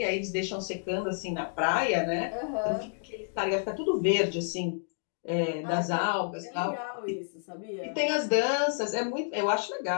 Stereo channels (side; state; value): right; silent; digital silence